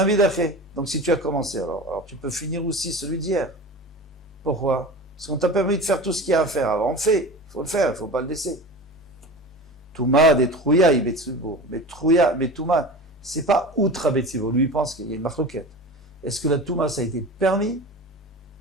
Donc si tu as commencé, alors tu peux finir aussi celui d'hier. Pourquoi? Parce qu'on t'a permis de faire tout ce qu'il y a à faire. Alors on fait, il faut le faire, il ne faut pas le laisser. Touma des Trouya, Betzibour. Mais Touma, c'est pas outre à Betzibour. Lui, il pense qu'il y a une marloquette. Est-ce que la Touma, ça a été permis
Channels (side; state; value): both; normal; correlation 0.33